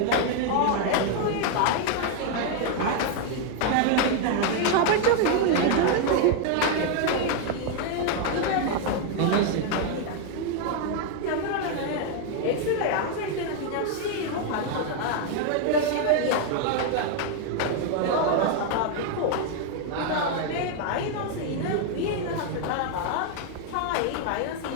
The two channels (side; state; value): both; different; correlation 0.01